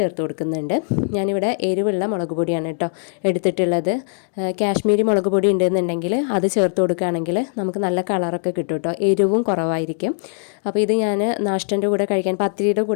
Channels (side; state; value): right; silent; 60 dB below the other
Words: കൊടുക്കുന്നുണ്ട്. ഞാനിവിടെ എരിവുള്ള മുളക് പൊടിയാണ് കേട്ടോ എടുത്തിട്ടുള്ളത്. കാശ്മീരി മുളക് പൊടി ഉണ്ടെന്നുണ്ടെങ്കിൽ അത് ചേർത്ത് കൊടുക്കുകയാണെങ്കിൽ നമുക്ക് നല്ല കളറൊക്കെ കിട്ടും കേട്ടോ. എരിവും കുറവായിരിക്കും. അപ്പോൾ ഇത് ഞാൻ നാഷ്ടൻ്റെ കൂടെ കഴിക്കാൻ, പത്തിരിയുടെ